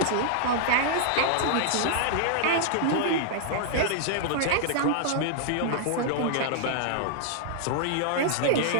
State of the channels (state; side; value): different; both; correlation -0.01